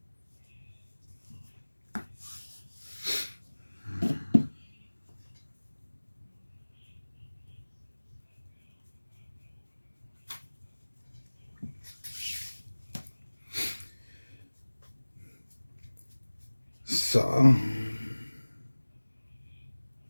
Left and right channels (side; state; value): both; inverted; correlation -1.00